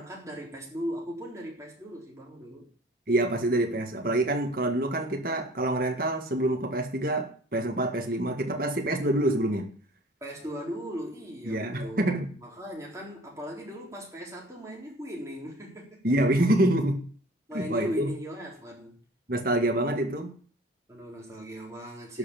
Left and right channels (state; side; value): normal; both; correlation 0.48